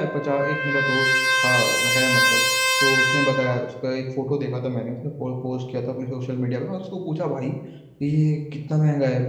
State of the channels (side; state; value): both; identical; correlation 1.00